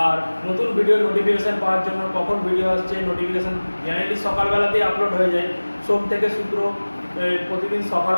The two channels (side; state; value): both; inverted; correlation -1.00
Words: আর নতুন ভিডিও নোটিফিকেশান পাওয়ার জন্য, কখন ভিডিও আসছে নোটিফিকেশান জেনারেলি সকালবেলাতেই আপলোড হয়ে যায়, সোম থেকে শুক্র প্রতিদিন